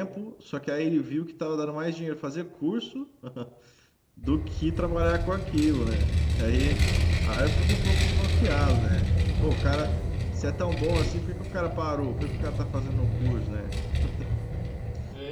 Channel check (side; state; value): both; identical; correlation 1.00